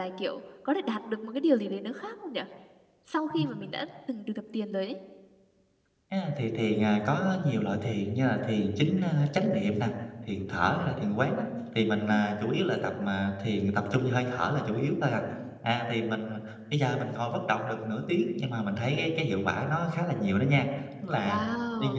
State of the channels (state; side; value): identical; both; correlation 1.00